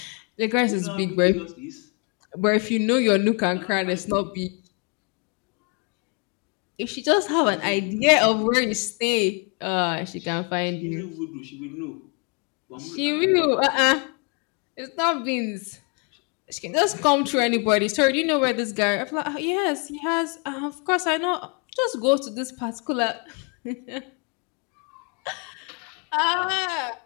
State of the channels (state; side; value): quieter; right; 34.6 dB